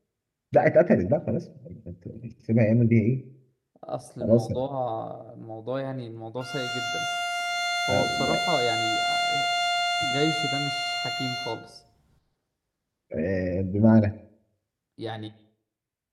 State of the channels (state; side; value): identical; both; correlation 1.00